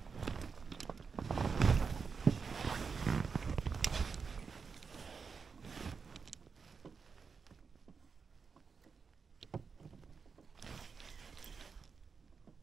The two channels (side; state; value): left; quieter; 5.4 dB